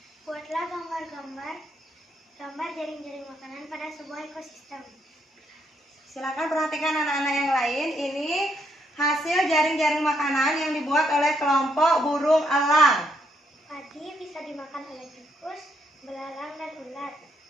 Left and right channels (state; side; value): normal; both; correlation 0.75